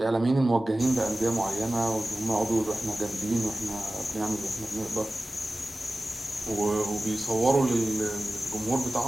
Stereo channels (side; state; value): both; normal; correlation 0.96